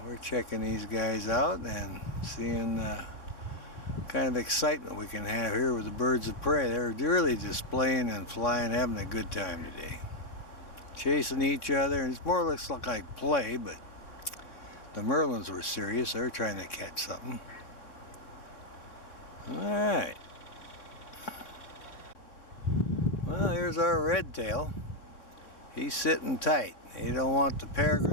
we're checking these guys out and seeing kind of excitement we can have here with the birds of prey. They're really displaying and flying, having a good time today. Chasing each other, and it's more or less like play, but the merlins were serious. They're trying to catch something. Alright. Well, here's our redtail. He's sitting tight. He don't want the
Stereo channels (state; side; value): late; right; 3.6 ms